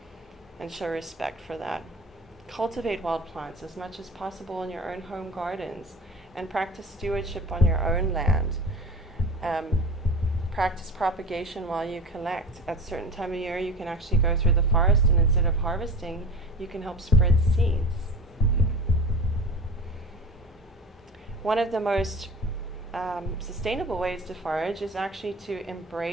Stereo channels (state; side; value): normal; both; correlation 0.35